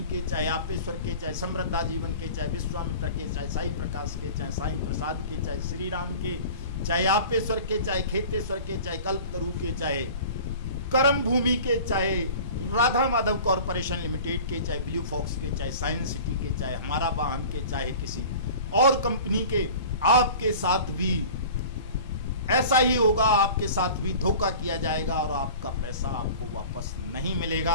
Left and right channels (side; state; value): both; inverted; correlation -0.40